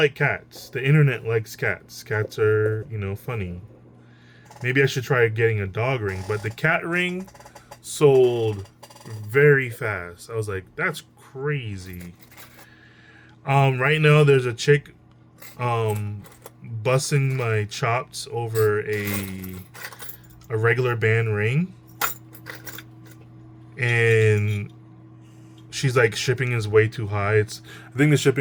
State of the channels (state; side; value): identical; both; correlation 1.00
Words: cats. The internet likes cats. Cats are, funny. Maybe I should try getting a dog ring, but the cat ring sold very fast. I was like, that's crazy. Right now there's a chick busting my chops over a regular band ring, and she's like, shipping is way too high. I think the